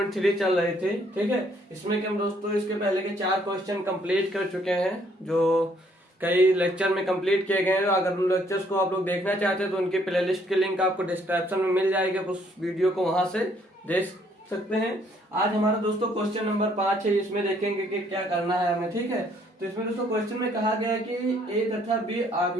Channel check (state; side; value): normal; both; correlation 0.66